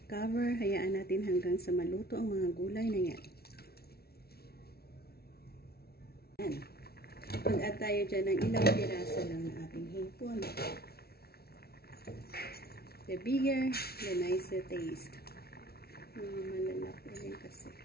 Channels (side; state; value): right; late; 0.45 ms